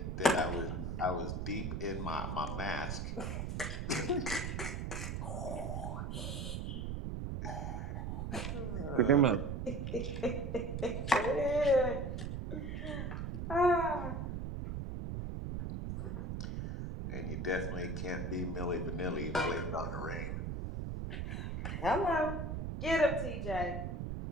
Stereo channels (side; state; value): right; noise; rumble, 3 dB below the sound